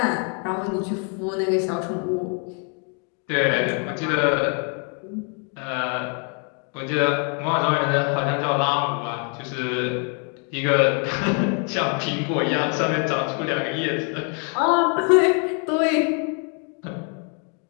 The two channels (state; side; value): quieter; right; 39.4 dB